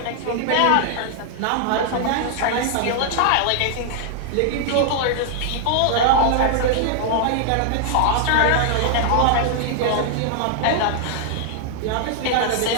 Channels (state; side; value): different; both; correlation 0.00